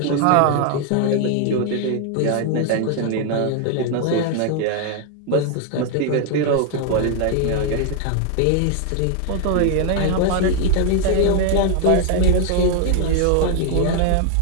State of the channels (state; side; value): different; both; correlation 0.00